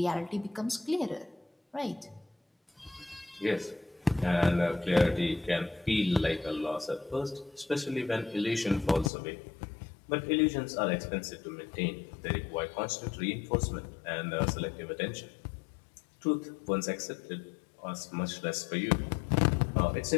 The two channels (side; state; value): right; drops out; at 9.1 s